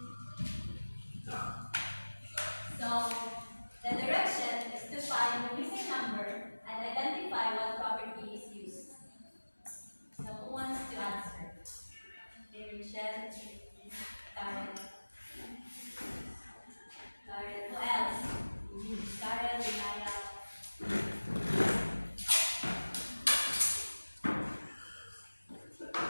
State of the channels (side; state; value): both; inverted; correlation -1.00